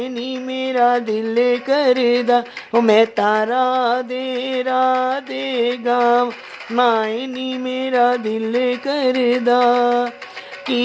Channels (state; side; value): identical; both; correlation 1.00